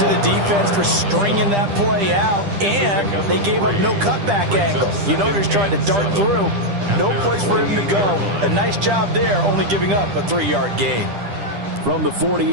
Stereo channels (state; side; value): late; left; 10 ms